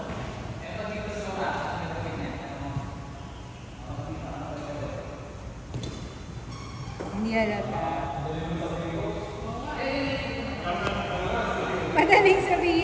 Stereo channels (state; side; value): identical; both; correlation 1.00